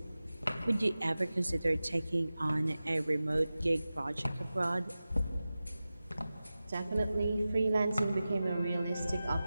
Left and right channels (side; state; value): both; inverted; correlation -0.95